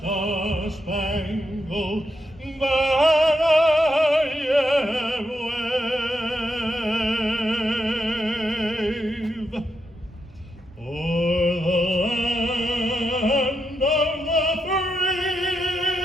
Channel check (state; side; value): normal; both; correlation 0.83